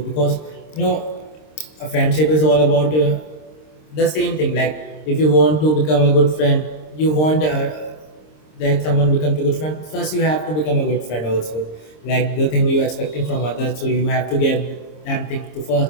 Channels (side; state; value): right; late; 26 ms